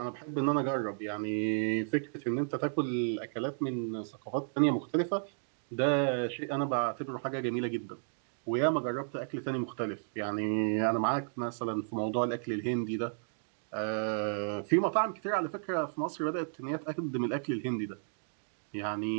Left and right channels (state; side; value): silent; left; digital silence